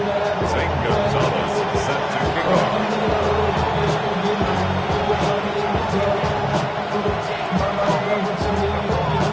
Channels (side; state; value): both; identical; correlation 1.00